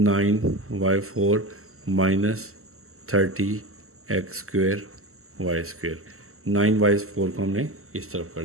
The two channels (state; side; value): late; left; 0.63 ms